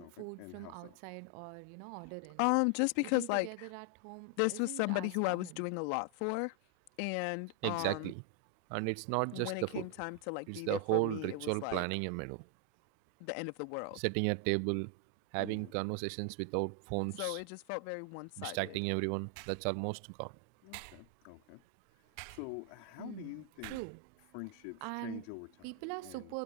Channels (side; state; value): both; different; correlation 0.00